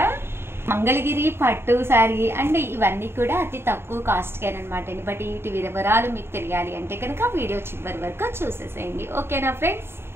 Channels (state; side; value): late; left; 0.11 ms